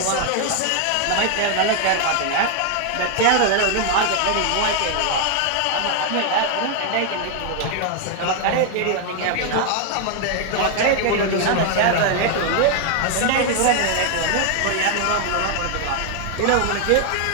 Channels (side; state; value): both; different; correlation 0.00